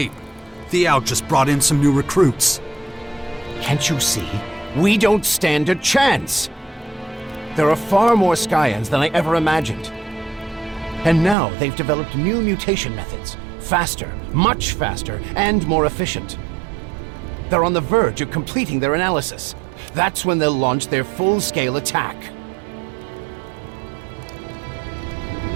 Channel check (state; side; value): drops out; left; at 11.4 s